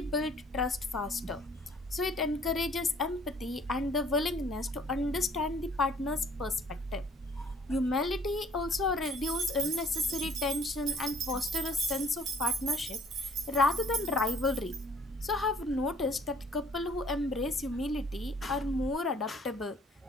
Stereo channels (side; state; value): both; normal; correlation 0.58